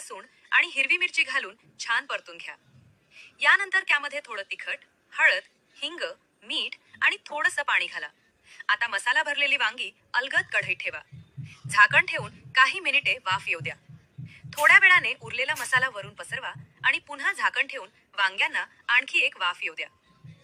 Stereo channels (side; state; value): both; identical; correlation 1.00